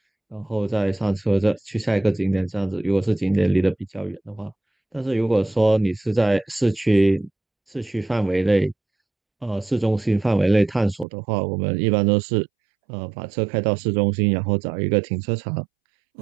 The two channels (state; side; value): drops out; left; at 11.1 s